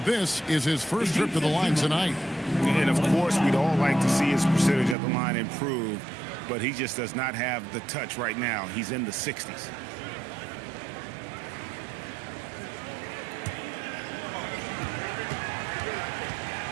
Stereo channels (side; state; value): left; drops out; at 5.0 s